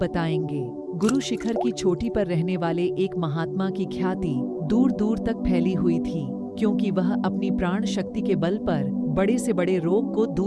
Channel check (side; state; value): both; identical; correlation 1.00